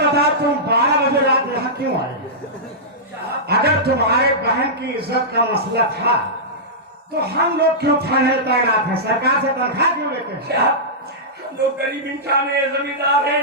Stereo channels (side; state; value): both; normal; correlation -0.14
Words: तुम 12 बजे रात यहाँ क्यों आए? अगर तुम्हारे बहन की इज्जत का मसला था तो हम लोग क्यों थाने तैनात हैं? सरकार से तनख्वाह क्यों लेते हैं? हम लोग गरीब इंसान है, जमींदार है,